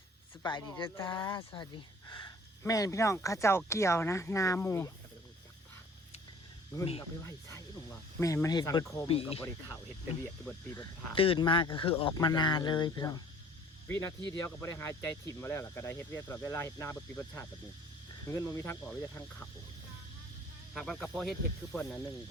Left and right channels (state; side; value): normal; both; correlation 0.52